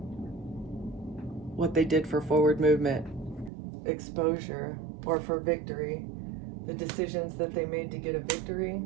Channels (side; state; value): left; drops out; at 3.5 s